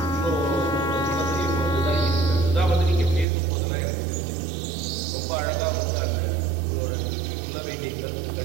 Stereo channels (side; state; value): left; drops out; at 3.2 s